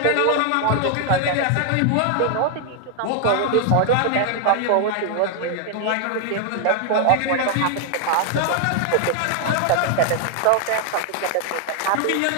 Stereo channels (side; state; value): both; different; correlation 0.00